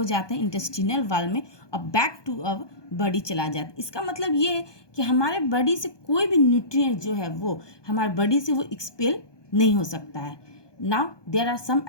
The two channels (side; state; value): right; late; 1.2 ms